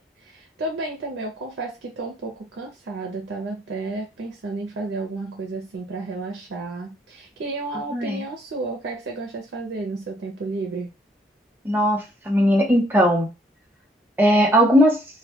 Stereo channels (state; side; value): normal; both; correlation 0.65